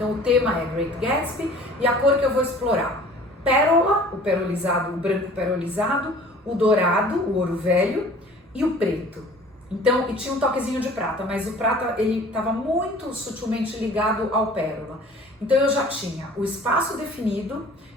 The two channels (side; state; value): both; normal; correlation 0.48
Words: o tema é Great Gatsby e a cor que eu vou explorar. Pérola, o perolizado, o branco perolizado, o dourado, o ouro velho e o preto. Então, e tinha um toquezinho de prata, mas o prata ele estava muito sutilmente ligado ao pérola. Então eu já tinha o espaço definido,